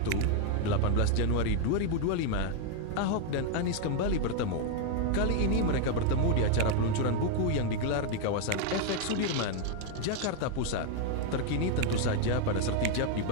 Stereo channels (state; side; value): different; both; correlation 0.00